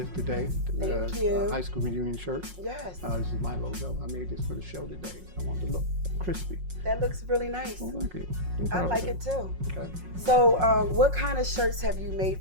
today. Thank you. High school reunion shirt. Yes. This is my logo. I made this for the show today. I want it to look crispy. That looks really nice. I like it. I like it too. Okay. So what kind of shirts have you made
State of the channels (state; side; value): late; left; 5.5 ms